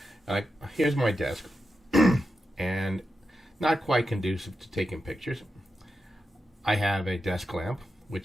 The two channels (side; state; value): both; normal; correlation 0.89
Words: like here's my desk, and not quite conducive to taking pictures. I have a desk lamp,